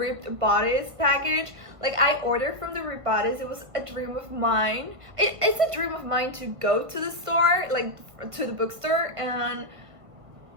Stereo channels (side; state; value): left; late; 1.5 ms